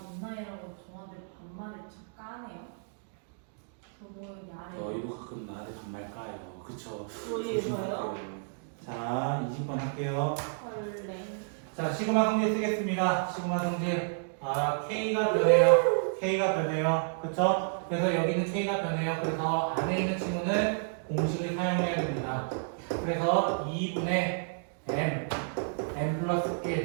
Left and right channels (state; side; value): silent; left; digital silence